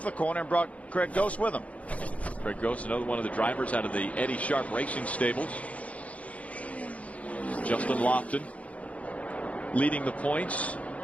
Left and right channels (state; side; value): late; right; 0.066 ms